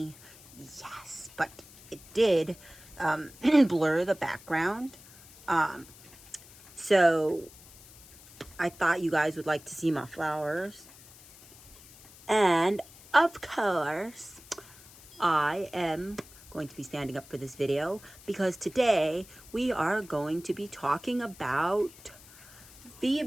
Yes, but it did blur the background. So I thought you guys would like to see my flowers. And of course, I am going to be standing up for this video because today we are going to be talking about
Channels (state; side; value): noise; left; hiss, 21 dB below the sound